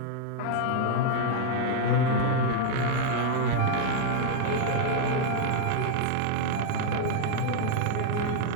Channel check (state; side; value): different; both; correlation 0.00